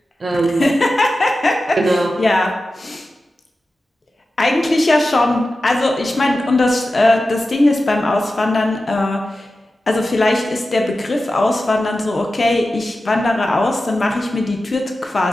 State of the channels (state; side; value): normal; both; correlation 0.93